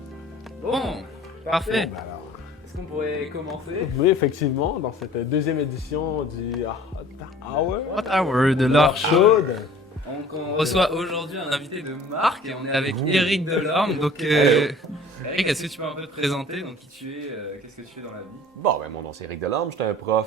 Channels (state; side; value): normal; both; correlation 0.48